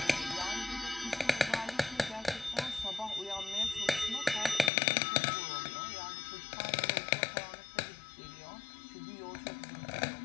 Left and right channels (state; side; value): drops out; right; at 4.7 s